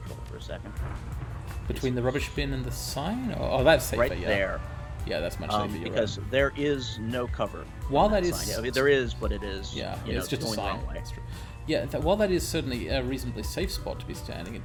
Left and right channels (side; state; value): both; identical; correlation 1.00